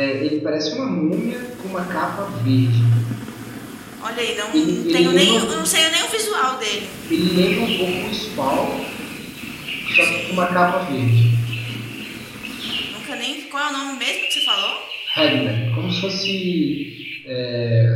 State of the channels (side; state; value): both; identical; correlation 1.00